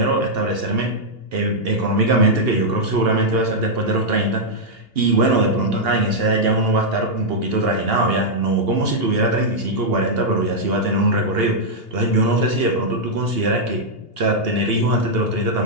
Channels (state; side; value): late; left; 2.8 ms